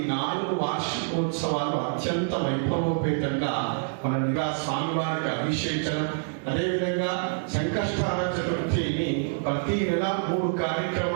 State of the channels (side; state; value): left; silent; digital silence